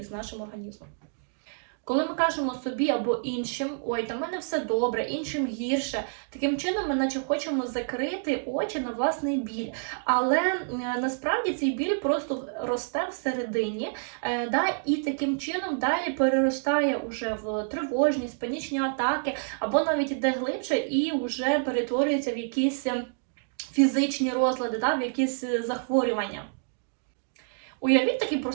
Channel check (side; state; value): left; silent; digital silence